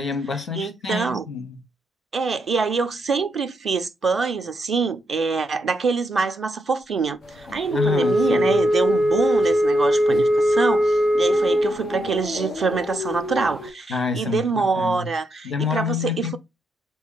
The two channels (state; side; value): normal; both; correlation 0.81